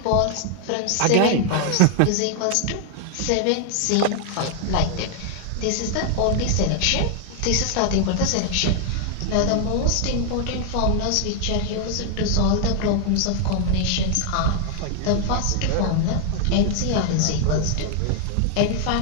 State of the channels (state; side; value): different; both; correlation 0.00